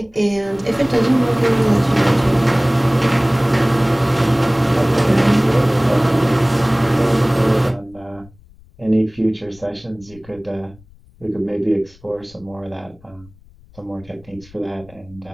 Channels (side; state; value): left; noise; rumble, 26 dB below the sound